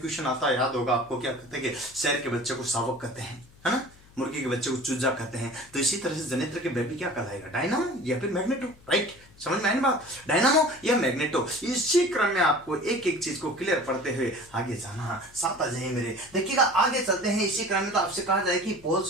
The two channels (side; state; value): left; noise; hum, 26 dB below the sound